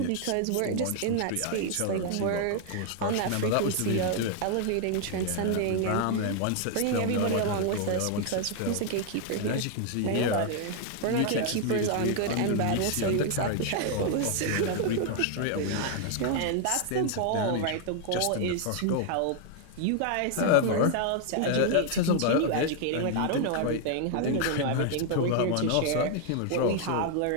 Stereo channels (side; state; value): both; different; correlation 0.00